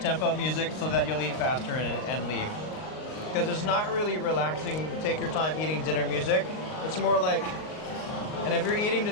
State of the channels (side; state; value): right; late; 38 ms